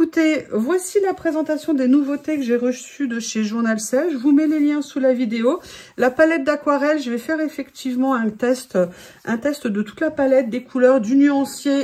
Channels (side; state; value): both; identical; correlation 1.00